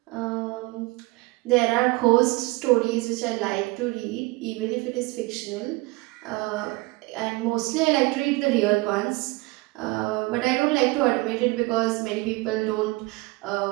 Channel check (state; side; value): quieter; left; 22.9 dB